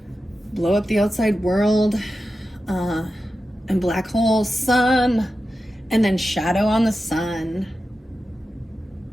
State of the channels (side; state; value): both; normal; correlation 0.92